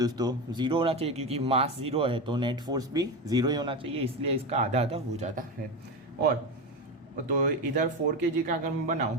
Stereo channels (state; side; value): normal; both; correlation 0.18